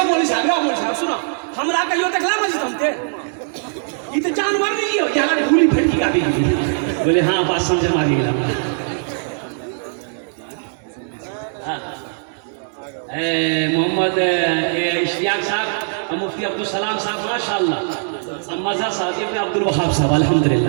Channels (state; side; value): silent; left; 66 dB below the other